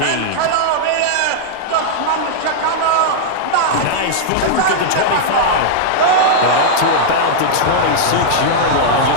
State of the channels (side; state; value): both; different; correlation -0.02